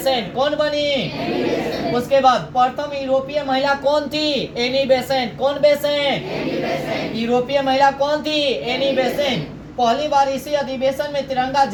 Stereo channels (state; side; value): identical; both; correlation 1.00